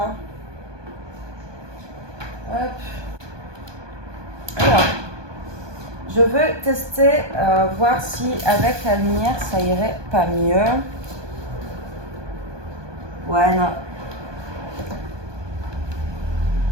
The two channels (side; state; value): left; late; 1.2 ms